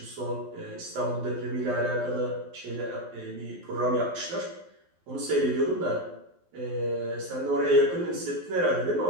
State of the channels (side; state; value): left; late; 12 ms